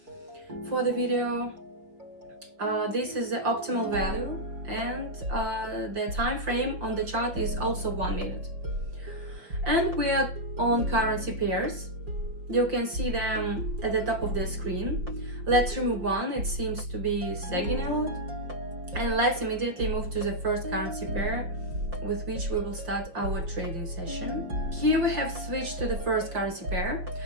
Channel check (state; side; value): late; left; 5.5 ms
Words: For the video, this is the optimal value, and the time frame on the chart is also 1 minute. And we are on currency pairs. You can see them at the top of the screen. Let's remove one, it seems to be sagging a lot. And let's immediately move to the first currency pair with which we will start our trading session. Here we have switched to the first currency pair.